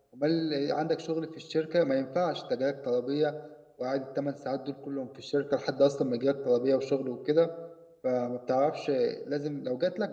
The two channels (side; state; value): both; identical; correlation 1.00